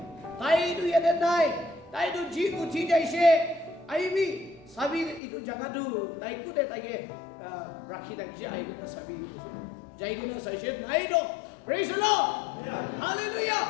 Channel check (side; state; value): right; drops out; at 5.2 s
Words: tai tu yede nai tai tu ji uthi jaise aibi sabi itu jaga tu tai ku de tai ke rakhi dakise aibi na sabi jai guna saise nai do praise the Lord hallelujah